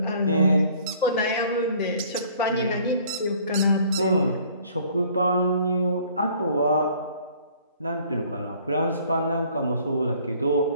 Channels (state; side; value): inverted; both; correlation -0.56